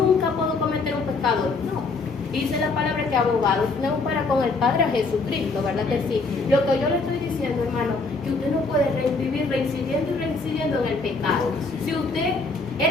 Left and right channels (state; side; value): quieter; right; 3.8 dB